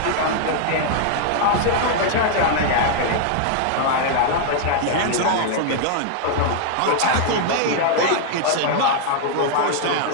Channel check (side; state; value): both; different; correlation 0.00